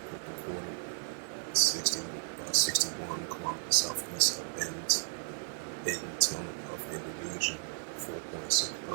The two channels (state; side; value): silent; left; digital silence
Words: recorded 61 kilometers southeast of Bentong of Indonesia. 4.6